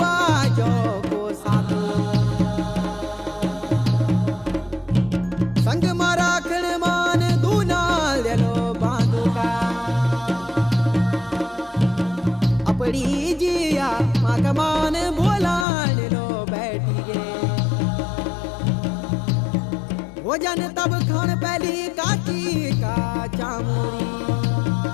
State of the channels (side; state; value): right; drops out; at 15.7 s